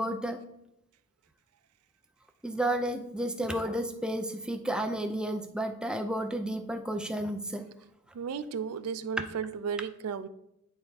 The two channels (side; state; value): both; normal; correlation 0.55